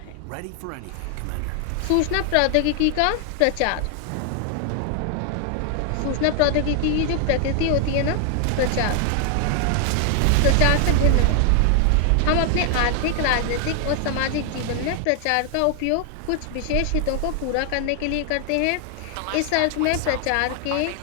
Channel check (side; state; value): both; different; correlation 0.00